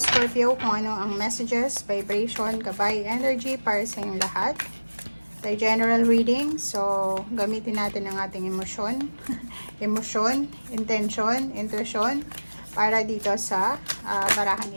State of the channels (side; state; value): both; inverted; correlation -1.00